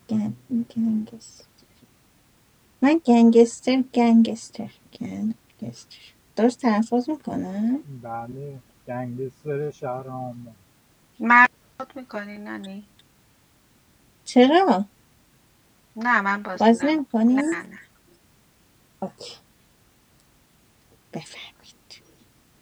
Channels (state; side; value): identical; both; correlation 1.00